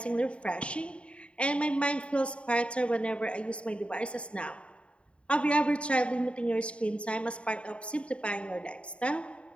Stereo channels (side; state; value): right; late; 0.059 ms